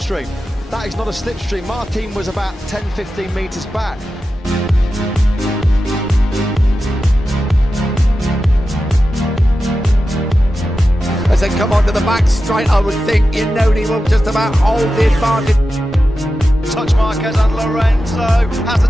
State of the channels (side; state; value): both; normal; correlation 0.92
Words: That is not a slipstream. Martin was about 10-15 metres back. As they come onto the back straight, I would think he will just about hold the advantage. Touch Marquez and Lorenzo. Has the